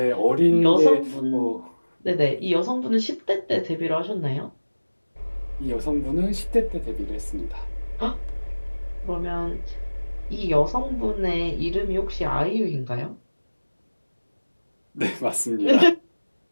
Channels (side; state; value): both; inverted; correlation -1.00